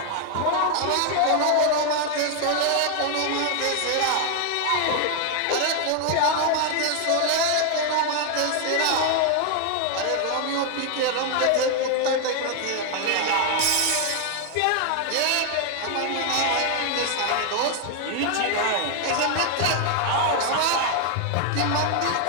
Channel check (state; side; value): different; both; correlation 0.01